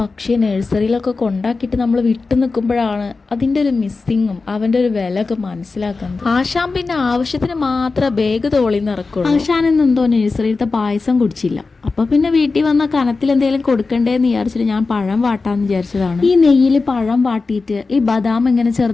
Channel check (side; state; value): right; quieter; 4.0 dB